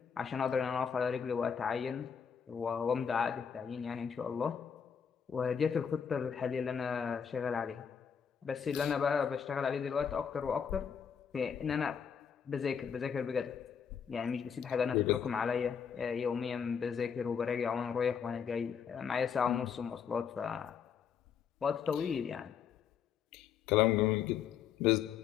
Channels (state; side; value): quieter; right; 7.2 dB